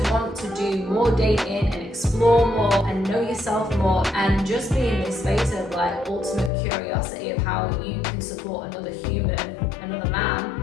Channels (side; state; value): right; drops out; at 6.5 s